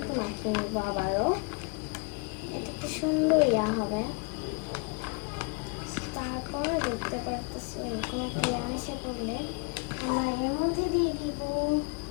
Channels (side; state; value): right; quieter; 33.0 dB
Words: মাখিয়ে নেব আবারও। এটা একটু সুন্দর হবে। তারপর দেখতে পারতেছি কোনো পেঁয়াজ এসে পড়লে আমার এর মধ্যে দিয়ে দিব